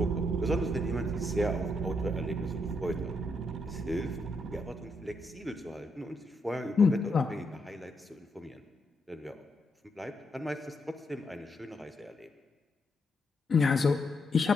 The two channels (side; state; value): both; normal; correlation 0.79